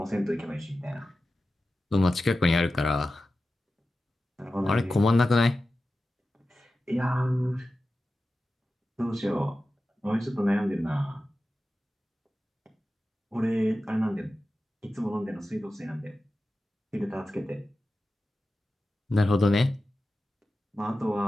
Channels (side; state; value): both; normal; correlation 0.93